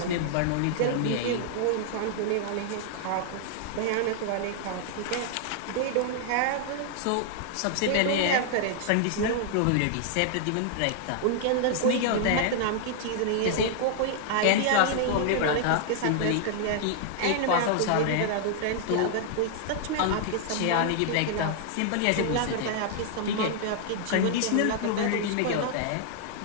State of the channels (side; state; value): both; different; correlation 0.00